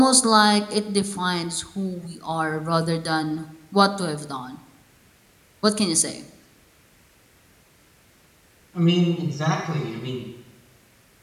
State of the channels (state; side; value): identical; both; correlation 1.00